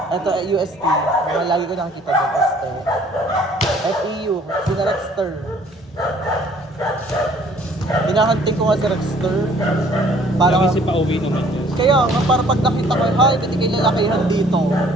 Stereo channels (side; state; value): both; normal; correlation 0.57